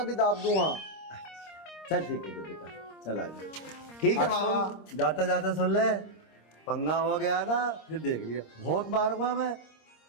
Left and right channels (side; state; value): right; late; 26 ms